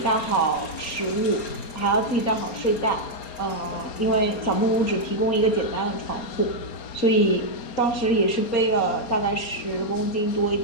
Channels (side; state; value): right; late; 4.3 ms